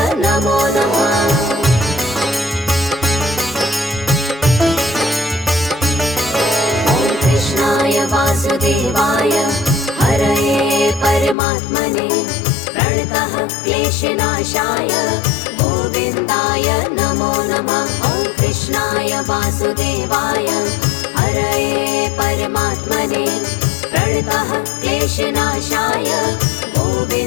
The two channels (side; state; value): right; drops out; at 11.4 s